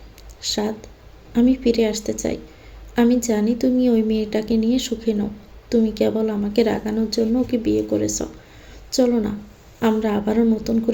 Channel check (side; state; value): both; identical; correlation 1.00